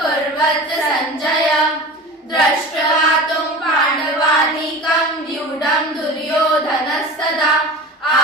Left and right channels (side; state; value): both; normal; correlation 0.35